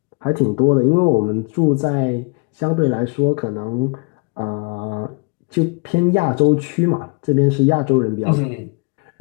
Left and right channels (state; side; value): quieter; right; 31.4 dB